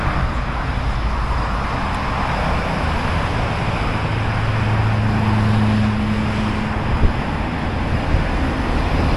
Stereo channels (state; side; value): identical; both; correlation 1.00